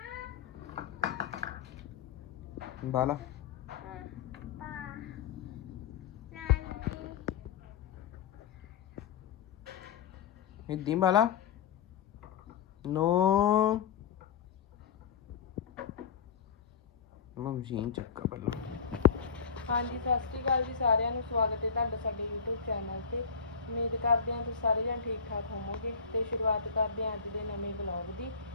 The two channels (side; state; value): right; quieter; 6.4 dB